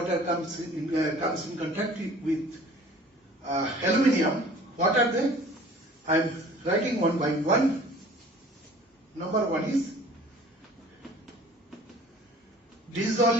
comes in contact with aluminium. What are they? I am writing one by one. Number 1 is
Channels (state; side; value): normal; both; correlation 0.49